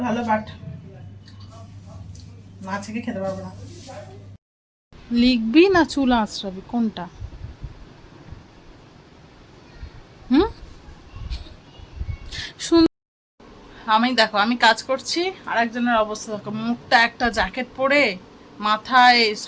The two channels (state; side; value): identical; both; correlation 1.00